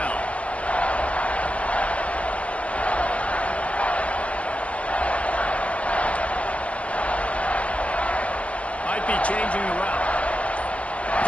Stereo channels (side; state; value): right; late; 0.063 ms